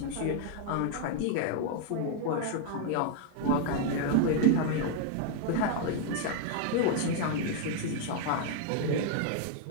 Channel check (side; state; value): both; different; correlation 0.00